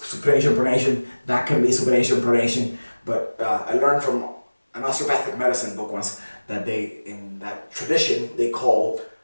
pronation. That can be supination, pronation. But I learned from an osteopathic medicine book once that in that tradition, they call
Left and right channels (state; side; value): inverted; both; correlation -1.00